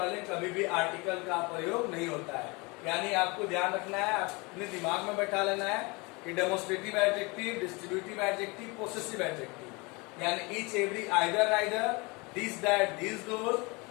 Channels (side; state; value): right; quieter; 27.0 dB